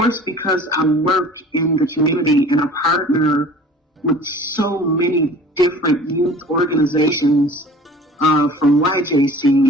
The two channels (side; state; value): both; normal; correlation 0.45